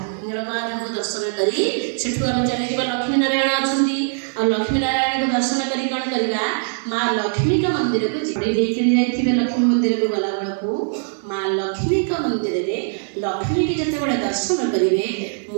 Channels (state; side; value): silent; left; 65 dB below the other